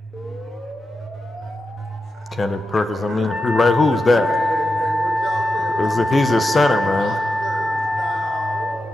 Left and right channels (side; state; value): both; normal; correlation 0.89